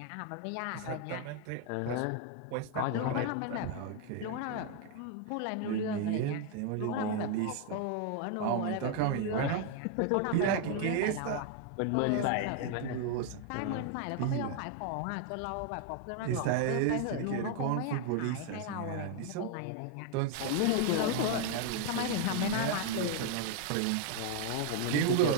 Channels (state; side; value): different; both; correlation 0.00